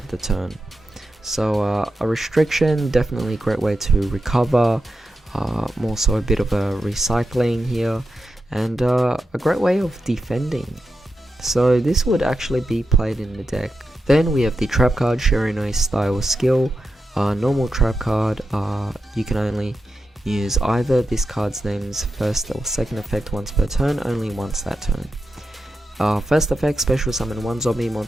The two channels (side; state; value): both; normal; correlation 0.89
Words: the turn. So a restriction, definitely a great way to recover, more so a bit of a recycling here, and a great way of defending. So this would actually be played in the deck. Then we have the trap card, Shiranui Style Skill. Normal trap card, you can only use either this card's name's first or second effect once per turn, only once that turn. First effect, special summon one zombie